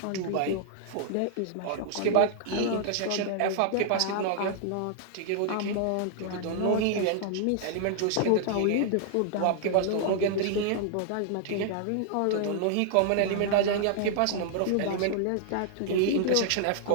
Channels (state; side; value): different; both; correlation -0.01